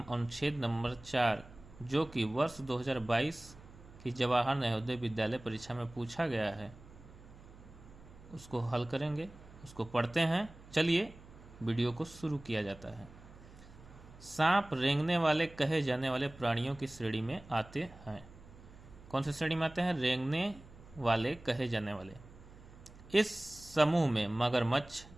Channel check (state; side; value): noise; right; hum, 20 dB below the sound